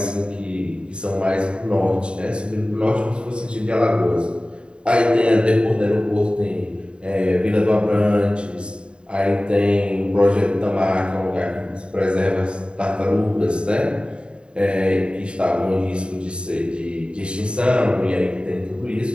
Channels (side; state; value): left; late; 0.052 ms